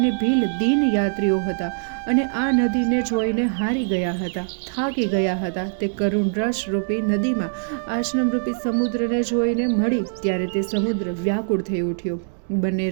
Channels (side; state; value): left; silent; digital silence